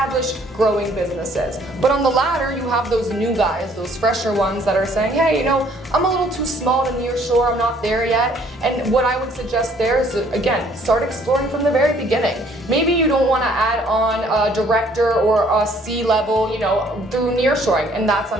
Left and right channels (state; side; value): normal; both; correlation 0.61